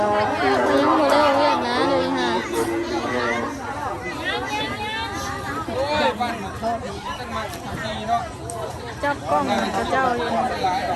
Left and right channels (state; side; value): identical; both; correlation 1.00